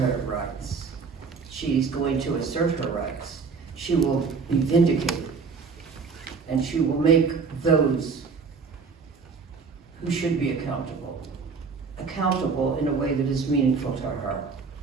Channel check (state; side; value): quieter; left; 5.1 dB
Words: rights. She's going to assert her rights. She will be vindicated. And she will make those who should be accountable in a way that is meaningful to her.